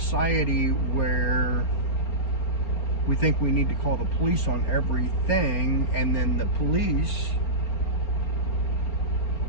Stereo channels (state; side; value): late; right; 4.3 ms